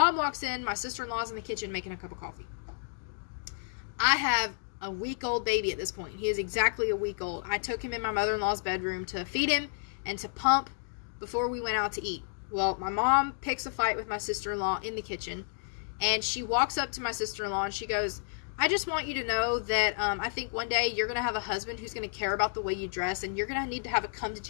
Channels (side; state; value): right; silent; digital silence